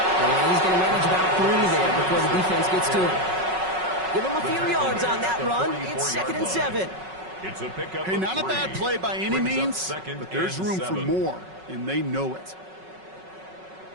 And he's going to manage about 3 there before the defense gets to him. Give him a few yards on that run. It's 2nd and 7. It's a pickup. Hey, not a bad play by any means, but there's room for more, and they know it.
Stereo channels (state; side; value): late; left; 5.4 ms